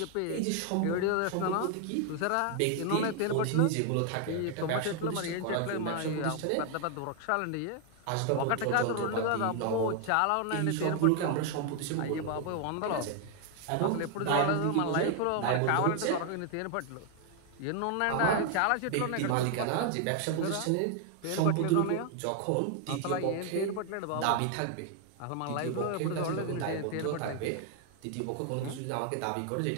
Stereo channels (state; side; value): different; both; correlation 0.00